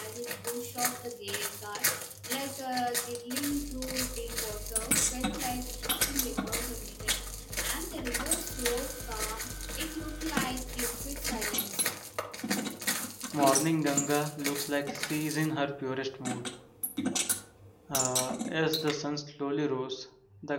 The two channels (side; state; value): both; identical; correlation 1.00